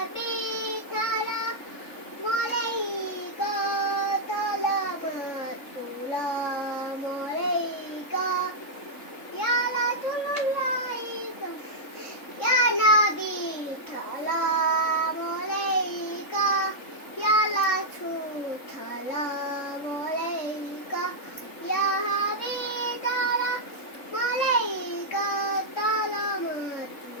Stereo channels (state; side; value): late; right; 3.8 ms